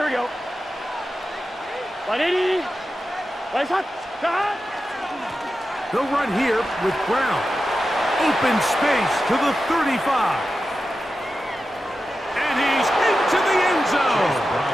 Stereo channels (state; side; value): normal; both; correlation 0.92